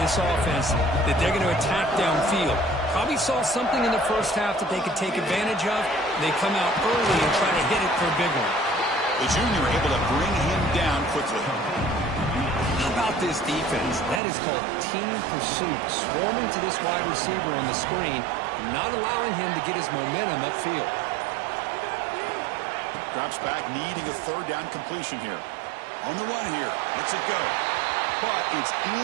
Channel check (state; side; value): drops out; left; at 14.2 s